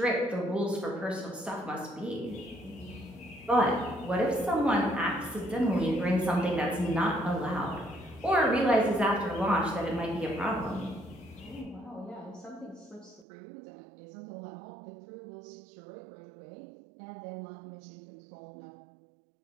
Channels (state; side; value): drops out; left; at 13.2 s